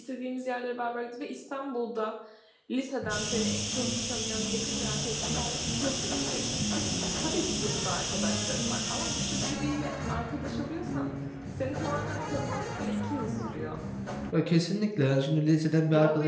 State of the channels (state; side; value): identical; both; correlation 1.00